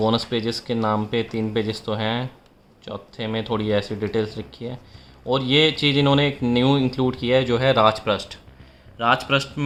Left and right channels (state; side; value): identical; both; correlation 1.00